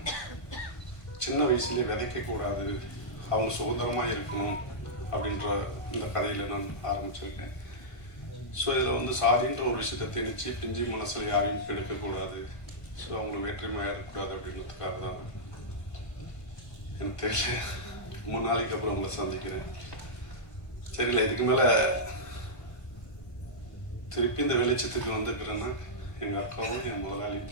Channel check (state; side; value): late; right; 1.5 ms